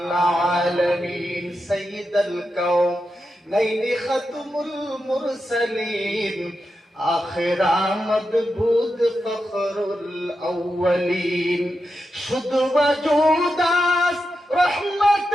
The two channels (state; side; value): normal; both; correlation 0.88